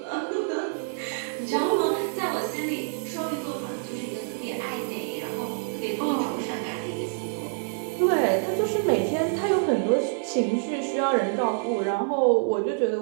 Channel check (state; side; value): silent; left; 60 dB below the other